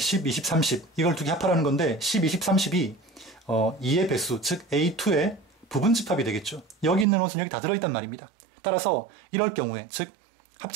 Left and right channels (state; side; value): drops out; left; at 7.1 s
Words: 20, 30 이걸 두 개 합하라는 건데 10, 20, 30이 2의 배수, 즉 A2의 부분집합이 되겠죠. 여기 있는 원소는 여기 다 들어있단 말입니다. 따라서 이럴 경우에, 즉